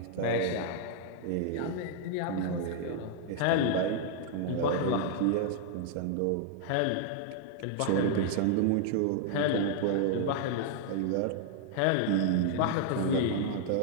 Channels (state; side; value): different; both; correlation 0.00